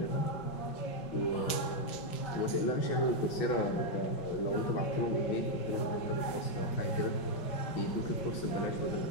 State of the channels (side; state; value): right; late; 5.4 ms